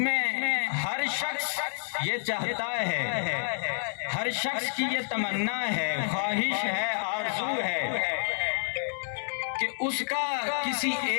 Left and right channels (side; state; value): right; silent; 59 dB below the other